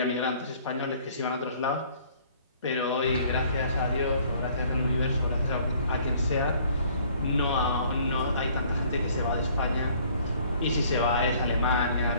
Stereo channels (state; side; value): inverted; both; correlation -0.57